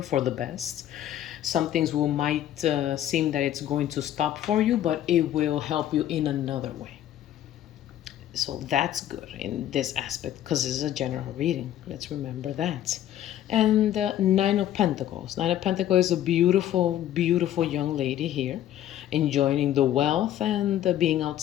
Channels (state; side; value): quieter; right; 11.9 dB